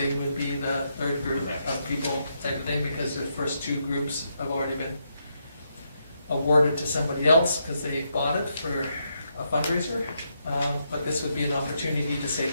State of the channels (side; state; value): both; inverted; correlation -0.80